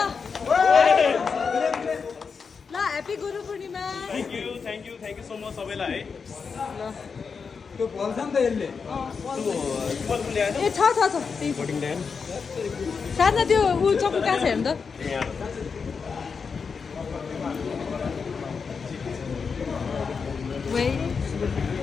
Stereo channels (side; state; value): right; quieter; 5.5 dB